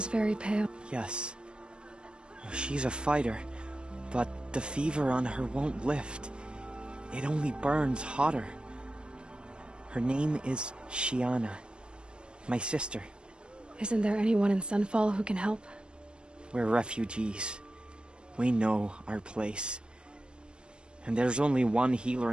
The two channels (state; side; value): late; left; 0.054 ms